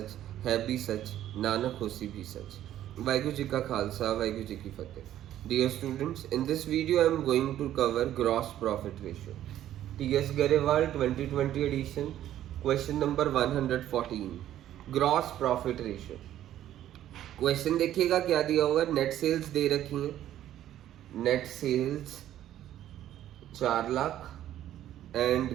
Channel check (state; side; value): quieter; left; 12.2 dB